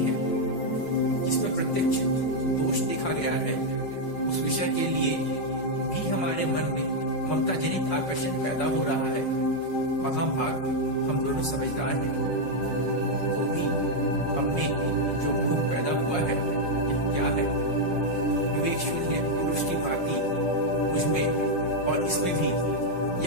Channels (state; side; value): late; right; 5.4 ms